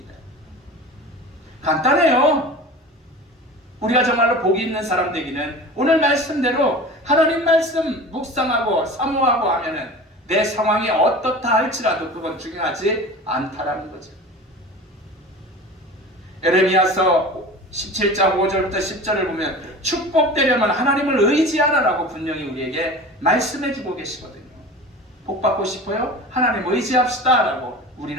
간단해요. 우리가 정말로 복 있는 사람 되기는 오늘 말씀대로 하나님 말씀 묵상하고 사모하고 하면은 내 상황이 어떻다 할지라도 그건 중요하지 않다라는 거죠. 에레미야서 17장 5절부터 10절을 보면 축복되려면 하나님을 의지하라라고 분명히 우리에게 말씀해주고 계시거든요. 복 받고 싶어요? 하나님 의지합시다 라고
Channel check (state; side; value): normal; both; correlation 0.36